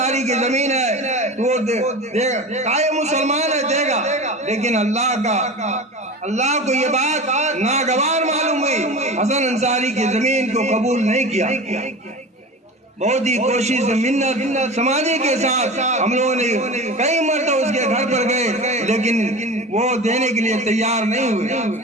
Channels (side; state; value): both; normal; correlation 0.32